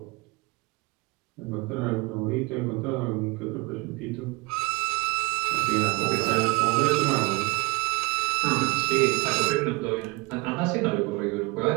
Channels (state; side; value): quieter; left; 25.1 dB